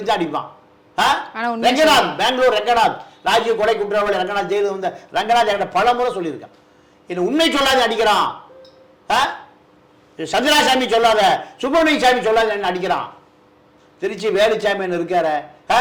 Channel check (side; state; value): both; identical; correlation 1.00